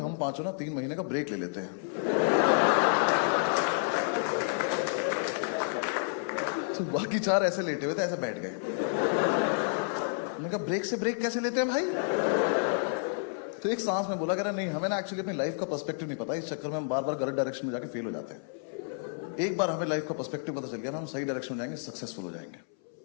पांचों ना 3 महीने का ब्रेक ले लेते हैं। तो बाकी 4 ऐसे लेटे हुए थे, ऐसे बैठ गए। मैंने कहा ब्रेक से ब्रेक कैसे लेते हैं भाई? तो एक सांस में बोला, कह रहा नहीं हमें ना एक्चुअली अपनी लाइफ का पर्सपेक्टिव नहीं पता, इस चक्कर में हम बार बार गलत डायरेक्शन में जाके फेल हो जाते हैं। एक बार हमें लाइफ का पर्सपेक्टिव पता चल गया ना, हम सही डायरेक्शन में जाएंगे, सक्सेसफुल हो जाएंगे।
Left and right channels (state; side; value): silent; right; 58 dB below the other